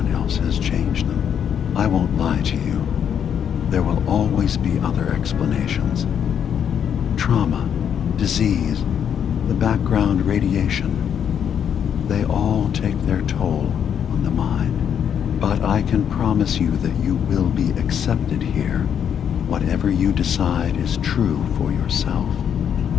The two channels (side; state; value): right; quieter; 8.4 dB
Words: else has changed them. I won't lie to you. There will always be other explanations. Trauma, disease, the background radiation. They all take their toll on the mind. But I can promise you that you will be accepted here. Whatever you decide is true for yourself.